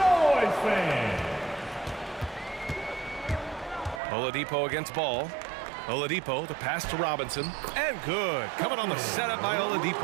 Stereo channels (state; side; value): drops out; left; at 4.0 s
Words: fans! Oladipo against Ball. Oladipo, the pass to Robinson, and good. Coming on the setup by